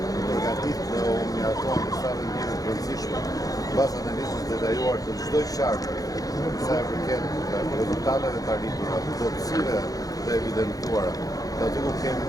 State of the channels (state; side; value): late; right; 0.17 ms